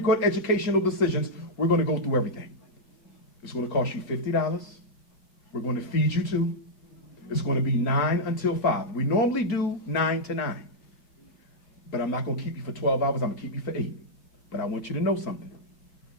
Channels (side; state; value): right; late; 4.7 ms